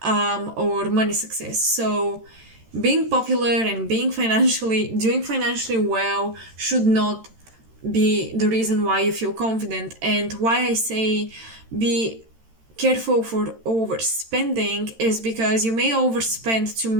or money success. So, being popular and doing financially well should not be the reason why you feel confident. And why I say be careful for overspending is because you may overspend to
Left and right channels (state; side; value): late; left; 13 ms